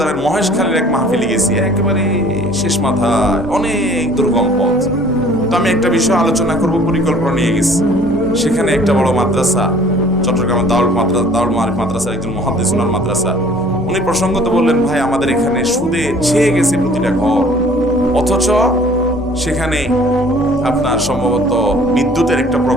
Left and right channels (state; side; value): normal; both; correlation 0.53